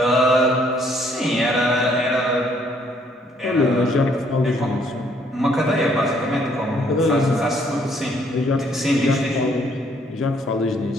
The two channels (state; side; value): normal; both; correlation 0.66